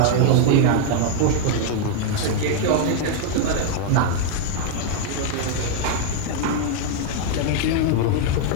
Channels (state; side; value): different; both; correlation 0.00